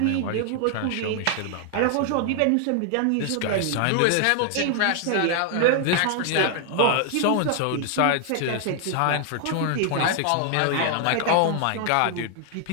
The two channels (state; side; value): different; both; correlation 0.00